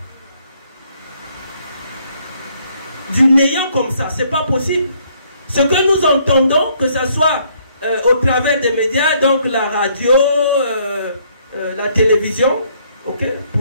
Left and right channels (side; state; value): both; inverted; correlation -0.67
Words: du néant comme ça. Ce n'est pas possible. Ce que nous entendons, que ce soit au travers des médias, donc la radio, la télévision, okay,